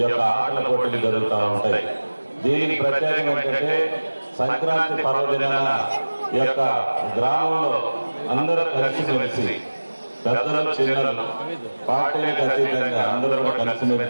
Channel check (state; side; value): inverted; both; correlation -1.00